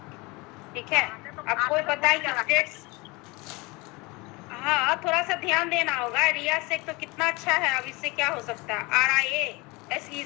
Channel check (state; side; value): quieter; right; 25.3 dB